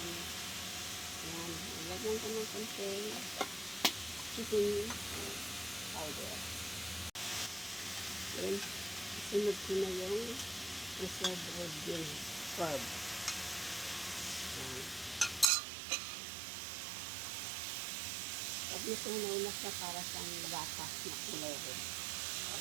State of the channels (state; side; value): drops out; left; at 15.5 s